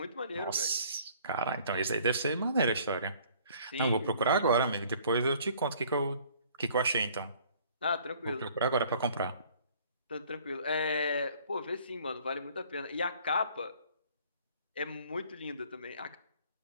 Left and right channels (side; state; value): both; inverted; correlation -0.56